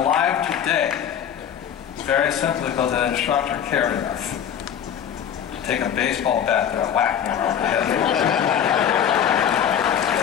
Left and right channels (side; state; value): right; quieter; 9.0 dB